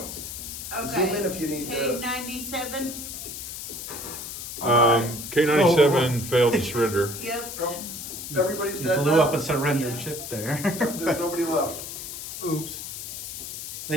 okay. Zoom in if you need to. K97. K97 failed to surrender. Yep. Everybody's You dead blew now? up a surrendered ship there. There's nobody left. Oops.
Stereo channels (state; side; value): noise; left; hiss, 8 dB below the sound